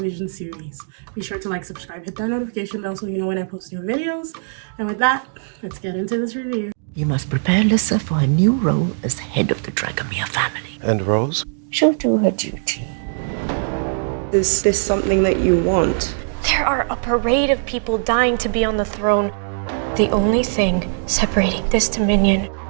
series. Be sure to like, subscribe, hit that notification bell so you know when I post new videos. And with that, let's get into this review. You must prepare Lissa for a new role as head of the Dragomir family. And Rose? She'll do her duty. Is this something that you want? There are a parade of people dying to be on the throne. The only thing separating this dominion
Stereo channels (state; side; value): silent; left; digital silence